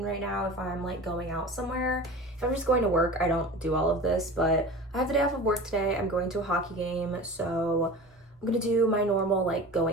right now if I'm like going out somewhere. If I'm just going to work, I don't do all of this, but I have the day off of work today. I'm going to a hockey game, so I'm gonna do my normal like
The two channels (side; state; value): both; normal; correlation 0.36